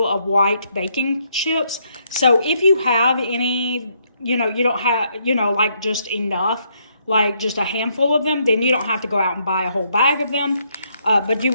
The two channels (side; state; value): both; inverted; correlation -0.73